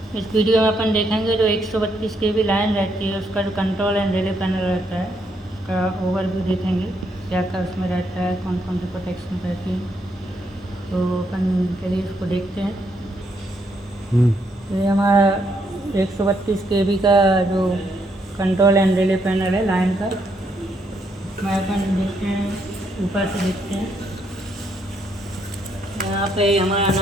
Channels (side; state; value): both; normal; correlation 0.75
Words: इस वीडियो में अपन देखेंगे जो 132 kV लाइन रहती है उसका जो कंट्रोल एंड रिले पैनल रहता है उसका ओवरव्यू देखेंगे, क्या क्या उसमें रहता है, कौन कौन सी प्रोटेक्शन रहती है। तो अपन चलिए इसको देखते हैं। ये हमारा 132 kV का जो कंट्रोल एंड रिले पैनल है लाइन का, इसमें अपन देखते हैं, ऊपर से देखते हैं। यहाँ पे हमारा